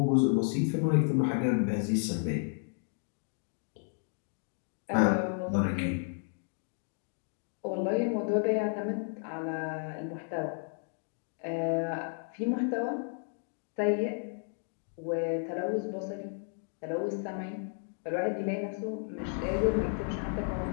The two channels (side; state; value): right; silent; 56 dB below the other